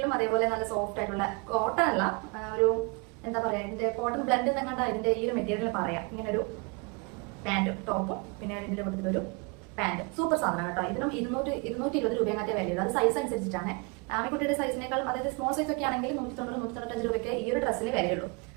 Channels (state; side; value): quieter; left; 31.3 dB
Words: അതേപോലെ നല്ല സോഫ്റ്റ് ആയിട്ടുള്ള കോട്ടൺ അല്ല, ഒരു എന്താ പറയാ, ഇതിന്റെ കോട്ടൺ ബ്ലെൻഡ് എന്നങ്ങാണ്ട് ഇതിന്റെ ഈ ഒരു മെറ്റീരിയൽ പറയാം. ഇങ്ങനെ ഒരു പാന്റും ടോപ്പും പിന്നെ ഇതിന്റെ കൊടുത്തിട്ടൊരു പാന്റ്. സൂപ്പർ സാധനം കേട്ടോ. ഇതിനും 220 രൂപയൊക്കെ വിലയുള്ളൂ. അത് സൈസ് അനുസരിച്ചിട്ടാണ്. ആമിക്കുട്ടിയുടെ സൈസിനേക്കാളും, അതായത് സ്മോൾ സൈസ് ഒക്കെ ആണെങ്കിൽ 190-195 രൂപയ്ക്ക് ഈ ഒരു ഡ്രസ്സിന് വിലയുള്ളൂ.